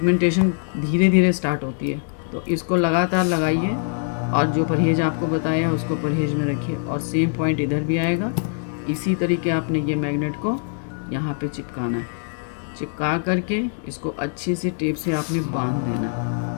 धीरे धीरे स्टार्ट होती है, तो इसको लगातार लगाइए और जो परहेज़ आपको बताया उसको परहेज़ में रखिए। और सेम पॉइंट इधर भी आएगा। इसी तरीके आपने ये मैग्नेट को यहाँ पे चिपकाना है। चिपका करके इसको अच्छी सी टेप से आपने बांध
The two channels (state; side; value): silent; right; digital silence